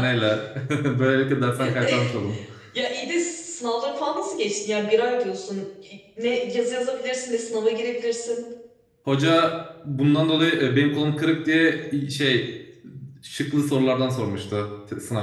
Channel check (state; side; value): identical; both; correlation 1.00